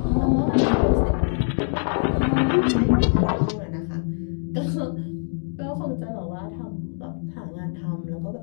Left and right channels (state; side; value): silent; right; 63 dB below the other